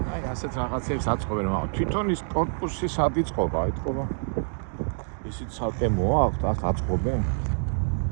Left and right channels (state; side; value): silent; left; digital silence